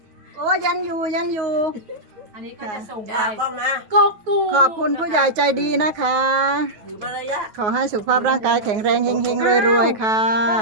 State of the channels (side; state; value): left; late; 9.3 ms